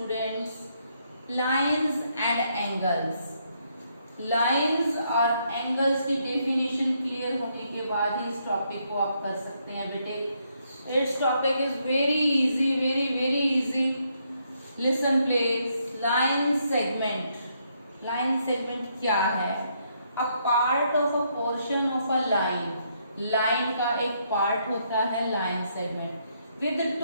Lines and angles. Lines और angles की definition clear होने के बाद ही इस topic को आप कर सकते हैं बेटे. It's topic is very easy, very easy. Listen please. Line segment. Line segment क्या है? A part of a portion of a line. Line का एक पार्ट होता है line segment with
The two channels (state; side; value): inverted; both; correlation -0.75